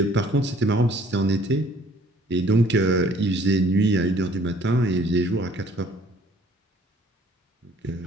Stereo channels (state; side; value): normal; both; correlation 0.57